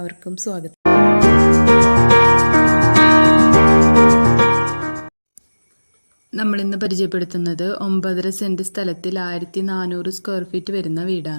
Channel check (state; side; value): inverted; both; correlation -1.00